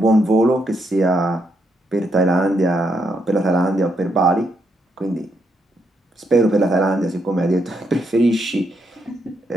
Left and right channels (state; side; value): normal; both; correlation 0.78